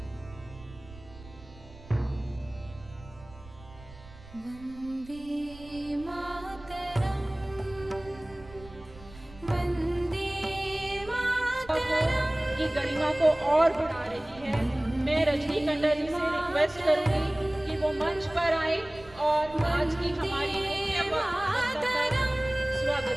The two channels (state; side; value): noise; right; rumble, 20 dB below the sound